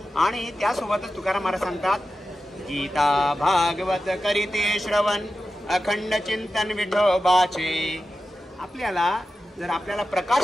आणि त्यासोबतच तुकाराम महाराज सांगतात गीता भागवत करीते श्रवण अखंड चिंतन विठोबाचे. आपल्याला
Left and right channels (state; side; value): normal; both; correlation 0.93